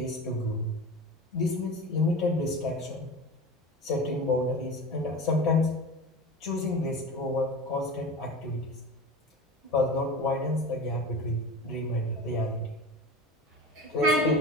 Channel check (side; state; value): both; normal; correlation 0.32